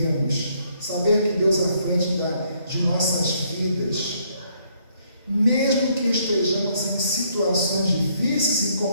saber que Deus é à frente de nossas vidas, mesmo que estejamos em situações difíceis e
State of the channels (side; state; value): both; inverted; correlation -0.69